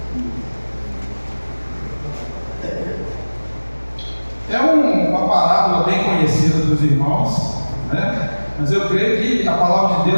É uma parábola bem conhecida dos irmãos, né? Mas eu creio que a palavra de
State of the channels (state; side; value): inverted; both; correlation -1.00